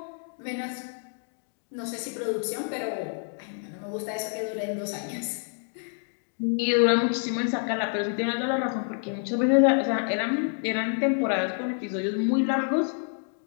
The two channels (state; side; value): silent; right; 58 dB below the other